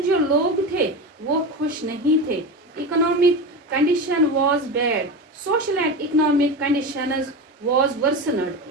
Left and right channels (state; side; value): normal; both; correlation 0.23